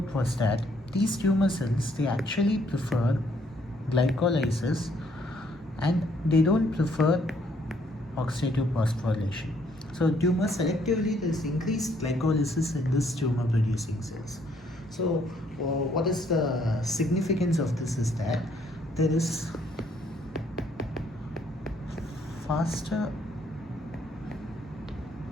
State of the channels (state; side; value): normal; both; correlation 0.67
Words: was that these tumor cells, they actually prefer glycolysis, and they don't prefer oxidative phosphorylation. So tumor selectively, there is increased glycolysis in this tumor producing cells. So what is the significance of this is that there is faster